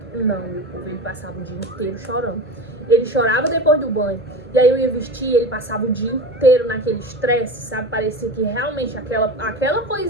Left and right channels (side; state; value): both; normal; correlation 0.29